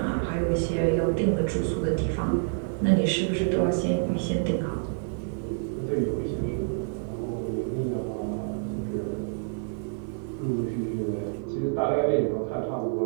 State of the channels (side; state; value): left; silent; 57 dB below the other